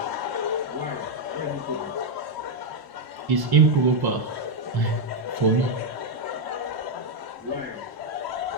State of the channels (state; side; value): late; left; 1.1 ms